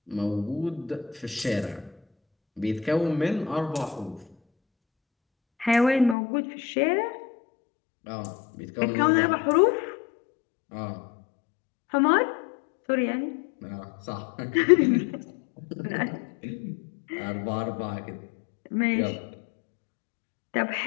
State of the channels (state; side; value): drops out; right; at 6.2 s